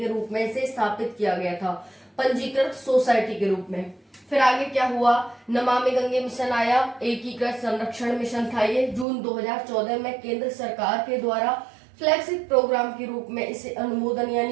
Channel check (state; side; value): drops out; left; at 9.1 s